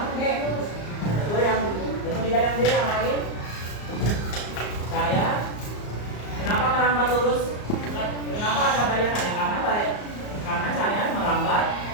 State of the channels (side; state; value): right; late; 34 ms